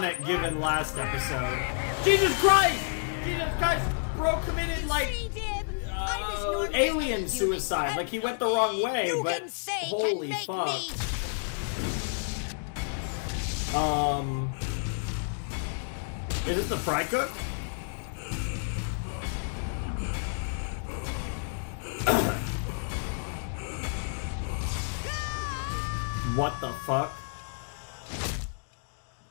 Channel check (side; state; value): right; silent; digital silence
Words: given last episode. Jesus Christ! Jesus Christ! Bro committed like alien suicide. Like he went the wrong way, but holy fuck. Is it the Frycook? What the fuck?